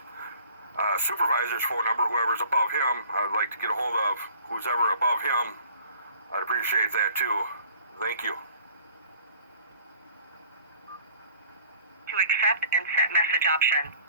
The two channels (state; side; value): inverted; both; correlation -0.53